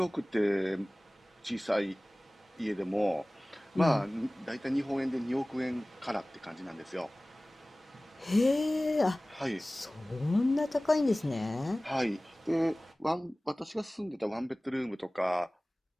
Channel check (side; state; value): both; normal; correlation 0.98